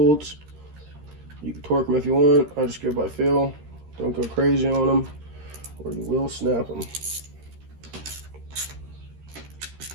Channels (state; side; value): late; left; 13 ms